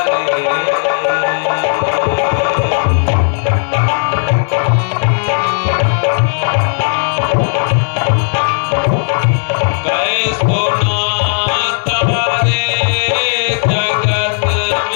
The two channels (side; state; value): right; silent; digital silence